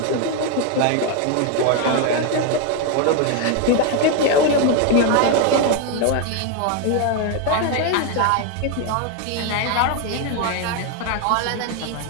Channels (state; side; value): different; both; correlation 0.01